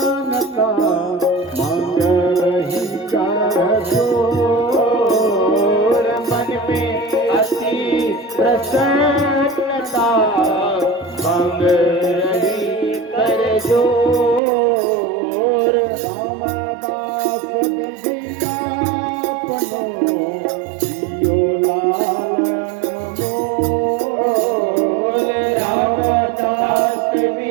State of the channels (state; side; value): drops out; left; at 14.4 s